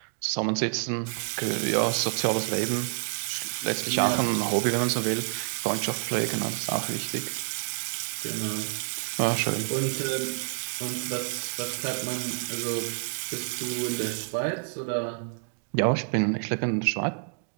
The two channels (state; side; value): silent; left; 59 dB below the other